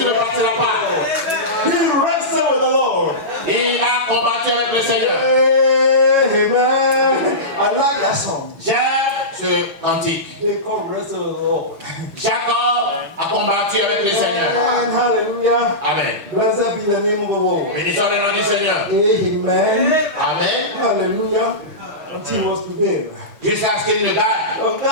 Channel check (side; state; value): left; late; 6.5 ms